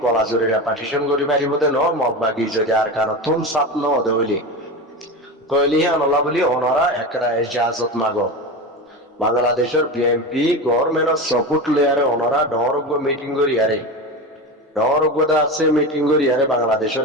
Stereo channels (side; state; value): both; normal; correlation 0.24